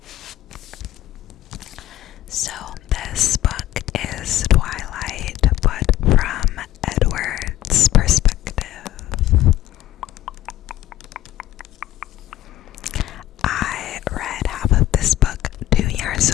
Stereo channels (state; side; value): quieter; right; 13.8 dB